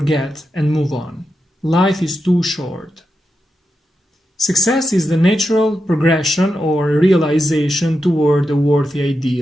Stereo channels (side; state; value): both; normal; correlation 0.88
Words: and move on. Life is too short. Success is the natural progression or realization toward a worthy